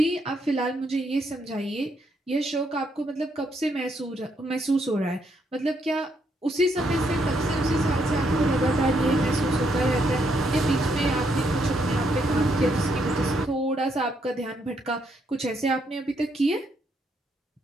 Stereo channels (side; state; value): both; normal; correlation 0.75